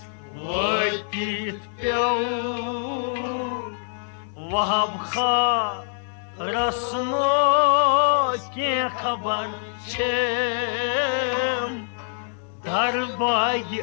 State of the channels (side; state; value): right; silent; digital silence